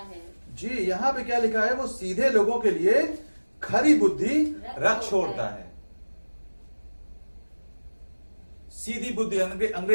जी, यहाँ पे क्या लिखा है? वो सीधे लोगों के लिए खरी बुद्धि रख छोड़ता है। सीधी बुद्धि,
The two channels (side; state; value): both; inverted; correlation -1.00